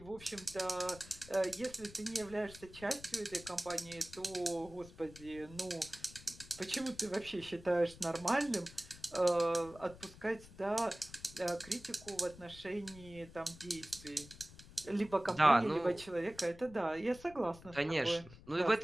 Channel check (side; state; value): left; noise; rumble, 19 dB below the sound